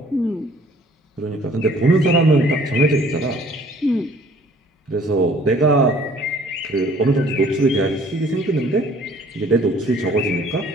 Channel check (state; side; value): normal; both; correlation 0.56